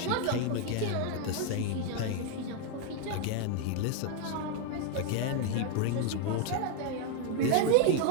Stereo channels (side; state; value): both; different; correlation 0.00